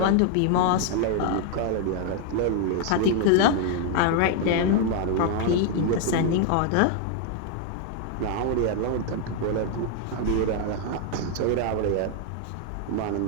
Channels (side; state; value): both; different; correlation 0.00